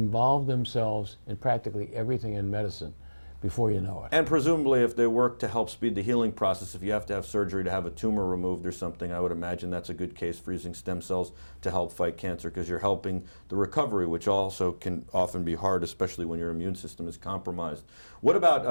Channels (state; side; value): inverted; both; correlation -1.00